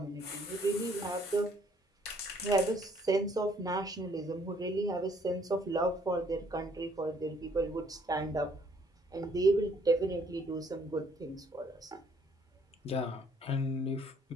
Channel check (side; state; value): both; normal; correlation 0.64